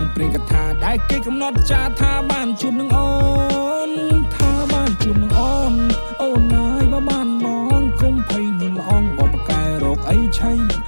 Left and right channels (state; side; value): inverted; both; correlation -1.00